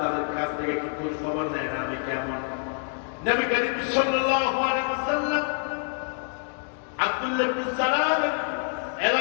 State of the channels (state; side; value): silent; right; 60 dB below the other